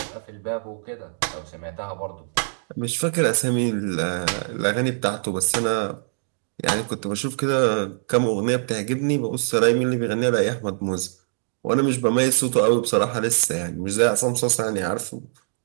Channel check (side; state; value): left; silent; digital silence